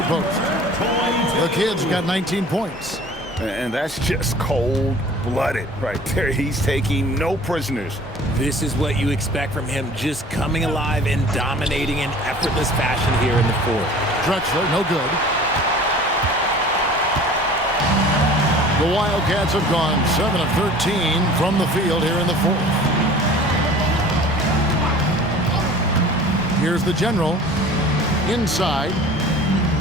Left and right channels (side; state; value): both; normal; correlation 0.45